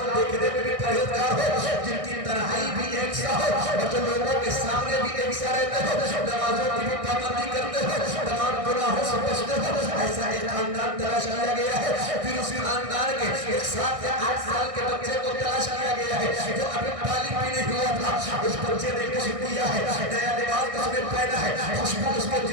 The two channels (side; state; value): left; late; 1.6 ms